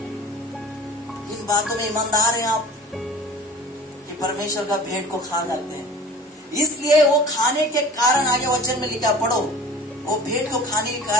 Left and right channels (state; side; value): normal; both; correlation 0.39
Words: इन बातों में ईमानदार हैं आप कि परमेश्वर का भेंट को खा जाते हैं? इसलिए वो खाने के कारण, आगे वचन में लिखा, पढ़ो, वो भेंट को खाने के